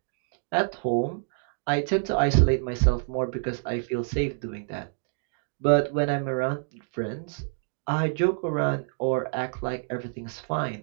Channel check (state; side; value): silent; left; digital silence